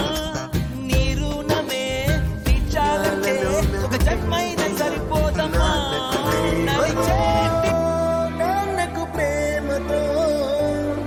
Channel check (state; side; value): identical; both; correlation 1.00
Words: నీ రుణమే తీర్చాలంటే ఒక జన్మైనా సరిపోదమ్మా.